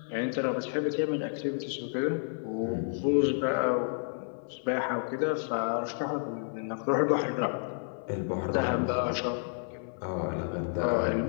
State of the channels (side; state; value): right; silent; 57 dB below the other